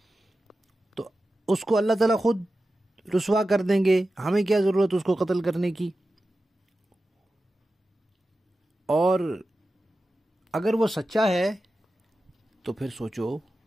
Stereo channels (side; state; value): both; normal; correlation 0.93